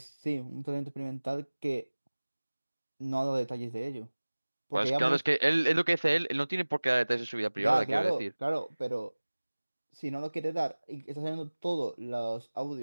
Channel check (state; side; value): inverted; both; correlation -1.00